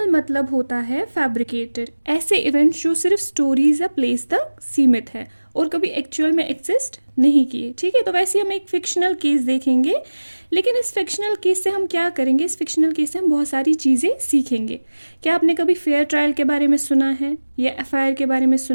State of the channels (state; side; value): inverted; both; correlation -1.00